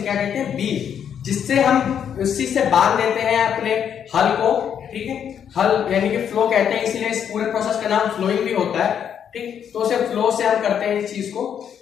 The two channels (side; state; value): right; quieter; 8.5 dB